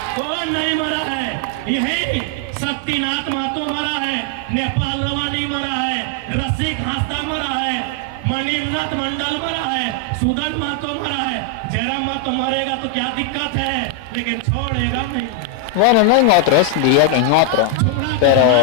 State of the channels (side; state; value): both; different; correlation 0.00